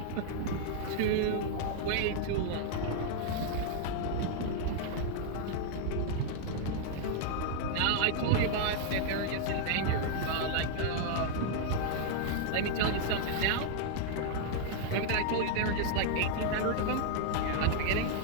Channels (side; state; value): both; different; correlation 0.00